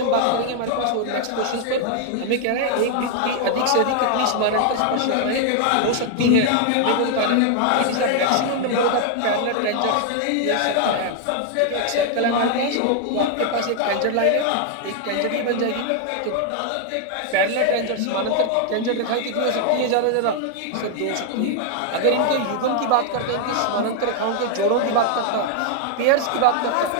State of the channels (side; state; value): both; different; correlation 0.00